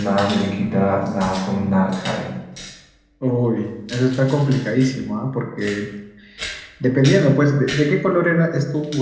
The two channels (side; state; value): both; identical; correlation 1.00